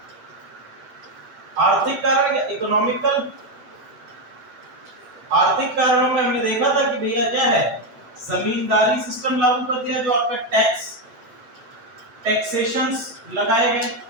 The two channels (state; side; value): late; left; 8.9 ms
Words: आर्थिक कारण या इकोनॉमिकल, आर्थिक कारणों में हमने देखा था कि भैया क्या है, जमींदारी सिस्टम लागू कर दिया, जो आपका टैक्सेशंस लगाए गए।